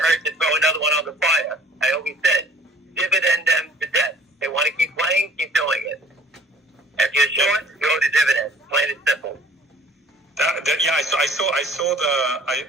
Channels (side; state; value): both; normal; correlation 0.51